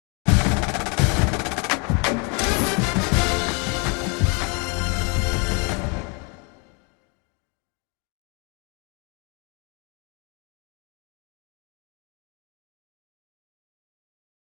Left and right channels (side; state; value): right; quieter; 33.1 dB